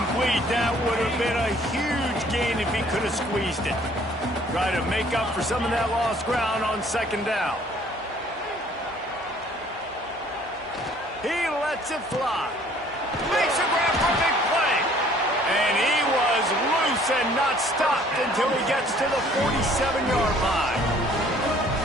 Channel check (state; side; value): normal; both; correlation 0.57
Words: That would have been a huge gain if he could have squeezed it. Try to make up for some of that lost ground on second down. He lets it fly. Makes a grab for a big play. And he was loose and not stopped until he gets to the 47-yard line.